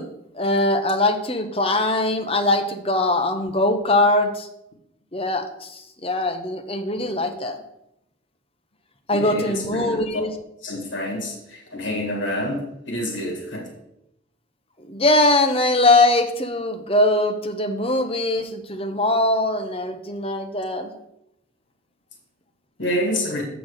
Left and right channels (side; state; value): both; normal; correlation 0.09